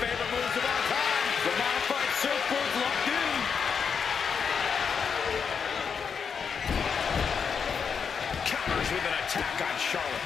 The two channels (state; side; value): quieter; right; 6.4 dB